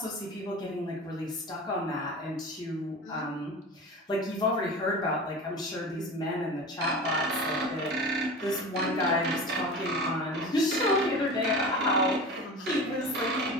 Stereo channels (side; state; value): both; normal; correlation 0.32